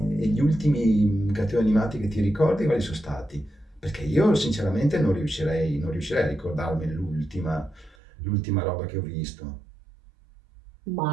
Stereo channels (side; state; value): left; drops out; at 8.0 s